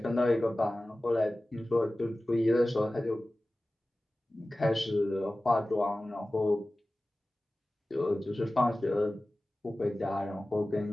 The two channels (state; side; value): normal; both; correlation 0.96